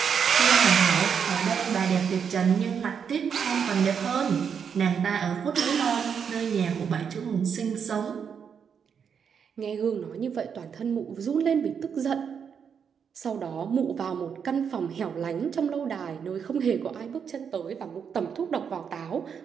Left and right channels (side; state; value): left; quieter; 7.1 dB